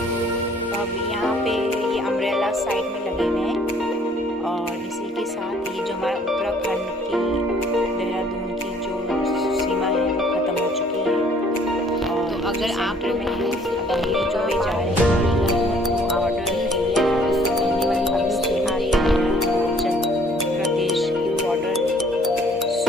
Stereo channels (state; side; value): normal; both; correlation 0.59